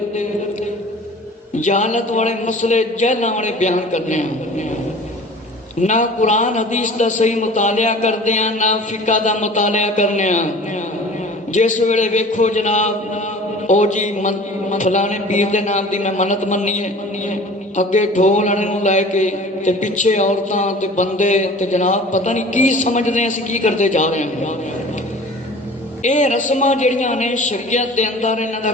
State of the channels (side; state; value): both; normal; correlation 0.43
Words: جہالت والے مسئلے جہلاں والے بیان کرنے ہیں، نہ قرآن حدیث دا صحیح مطالعہ کرتے ہیں، نہ فقہ دا مطالعہ کرنے ہیں۔ جس ویلے ویکھو جناب او جی فلانے پیر دے نام دی میں منت مننی ہے، اگے ڈھول آنے نوں لے کے تے پیچھے عورتاں تے بندے تے جناب پتہ نہیں کی سمجھدے ہیں اسی کی کرتے جا رہے ہیں۔ اے رسماں جڑیاں نے شریعت دے اندر انہاں دا